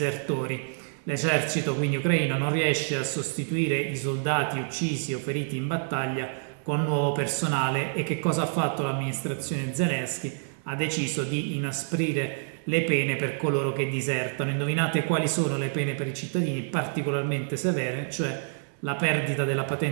L'esercito quindi ucraino non riesce a sostituire i soldati uccisi o feriti in battaglia con nuovo personale. E che cosa ha fatto l'amministrazione Zelensky? Ha deciso di inasprire le pene per coloro che disertano. Indovinate quali sono le pene per i cittadini particolarmente severe, cioè la perdita della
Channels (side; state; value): left; silent; 58 dB below the other